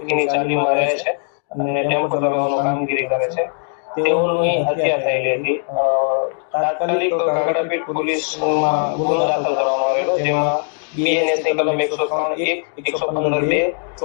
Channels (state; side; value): silent; right; 66 dB below the other